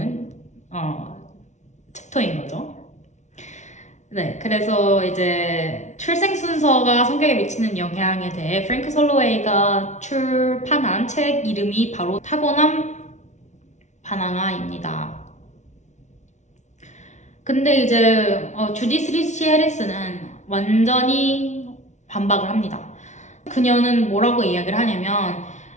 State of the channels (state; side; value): late; right; 0.34 ms